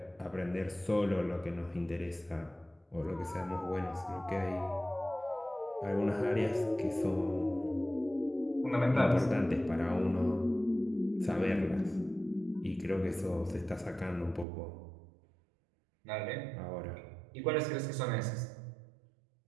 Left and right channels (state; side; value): drops out; left; at 14.5 s